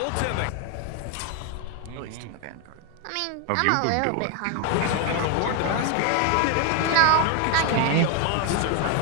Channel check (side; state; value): both; different; correlation 0.01